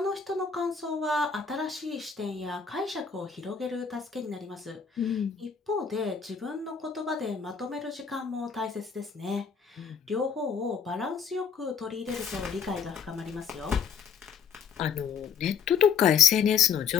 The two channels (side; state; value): right; quieter; 6.7 dB